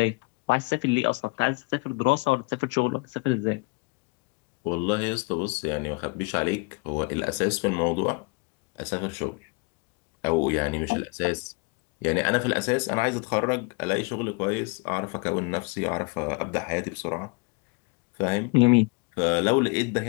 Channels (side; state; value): right; quieter; 29.5 dB